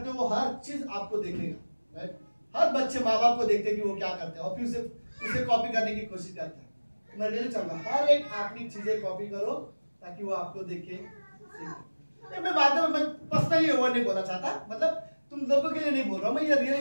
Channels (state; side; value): inverted; both; correlation -1.00